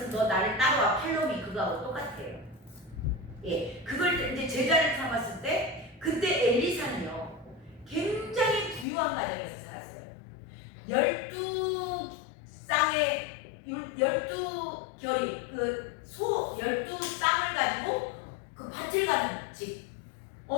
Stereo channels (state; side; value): drops out; right; at 8.8 s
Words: 너 나를 따라와 팔로미 그거하고 똑같아요. 그걸 이제 제자를 삼았을 때 그때 엘리사는요 굉장히 부유한 가정에서 살았어요. 12 결이 그 소 12쌍을 가지고 그 밭을 가는 집.